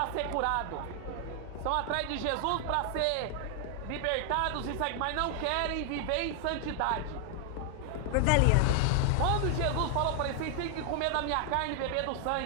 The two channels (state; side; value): different; both; correlation 0.00